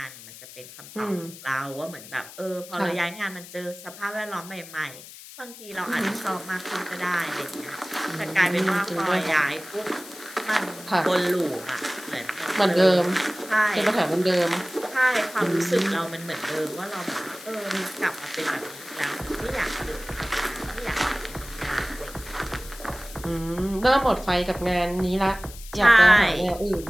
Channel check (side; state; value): left; noise; hiss, 16 dB below the sound